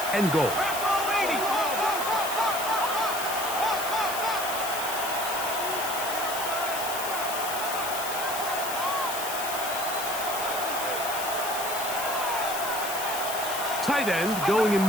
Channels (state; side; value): noise; left; hiss, 6 dB below the sound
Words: and goal. Tight end going in